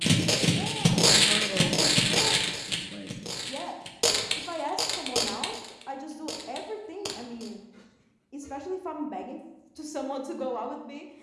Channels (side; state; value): both; identical; correlation 1.00